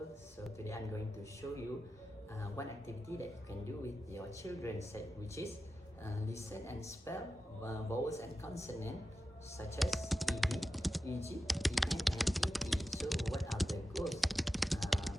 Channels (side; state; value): both; normal; correlation 0.92